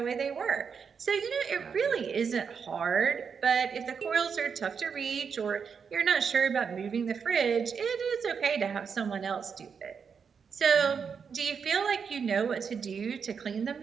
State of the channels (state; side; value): quieter; left; 6.3 dB